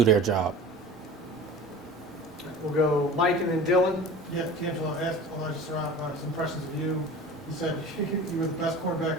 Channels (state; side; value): normal; both; correlation 0.38